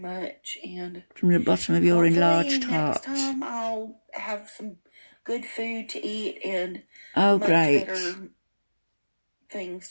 and from the bottom of your enlarged heart. Next time I'll have some good food to eat and much better things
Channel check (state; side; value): inverted; both; correlation -1.00